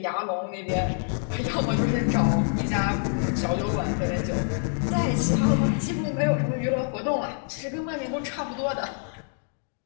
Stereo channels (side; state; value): right; silent; 56 dB below the other